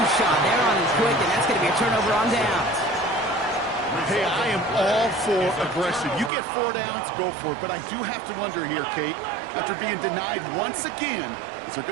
shot. They're on him quick, and that's going to be a turnover on downs. Hey, I am all for aggression. You get 4 downs, go for it. But I do have to wonder here, Kate, after being denied once again, is there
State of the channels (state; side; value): drops out; left; at 6.3 s